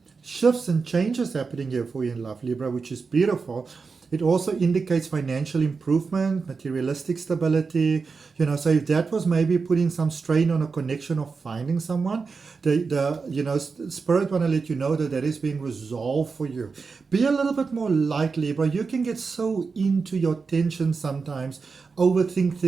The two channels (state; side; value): quieter; left; 4.8 dB